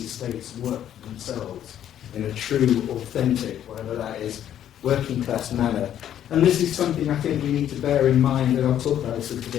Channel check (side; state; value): right; quieter; 10.7 dB